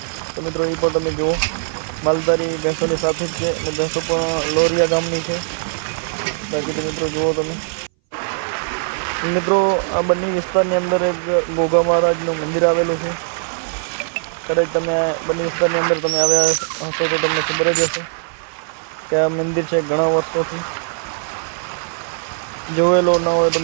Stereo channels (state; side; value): silent; left; 61 dB below the other